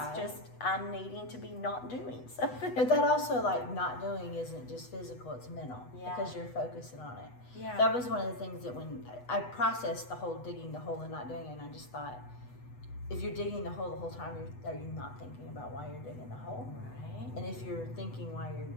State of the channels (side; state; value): right; late; 8.1 ms